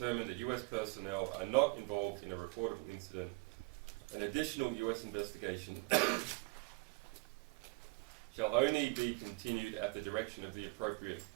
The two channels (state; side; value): quieter; left; 26.6 dB